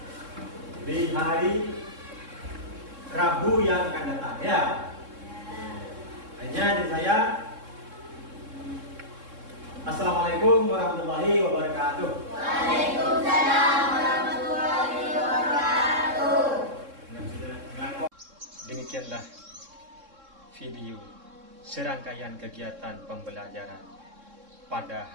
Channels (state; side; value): late; left; 3.7 ms